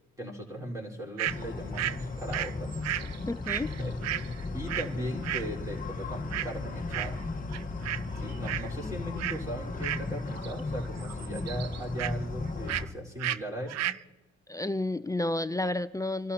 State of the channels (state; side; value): normal; both; correlation 0.53